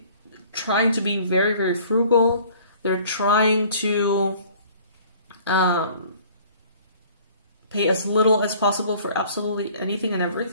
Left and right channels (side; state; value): both; inverted; correlation -0.52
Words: trying to be very, very frugal. They're trying to pay as little as possible for absolutely anything and